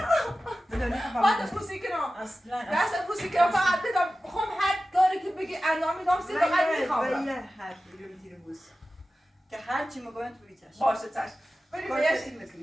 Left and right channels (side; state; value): both; normal; correlation 0.95